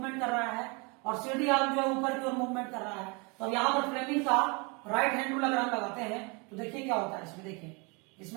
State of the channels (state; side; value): quieter; left; 30.3 dB